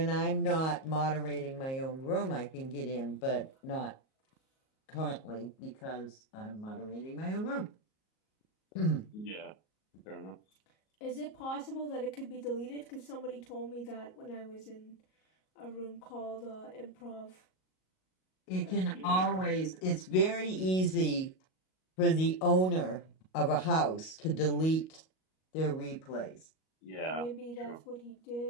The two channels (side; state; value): right; late; 38 ms